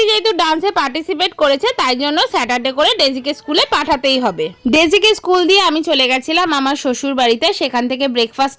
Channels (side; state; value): both; identical; correlation 1.00